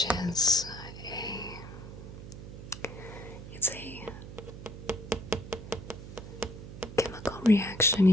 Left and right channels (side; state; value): right; noise; hum, 12 dB below the sound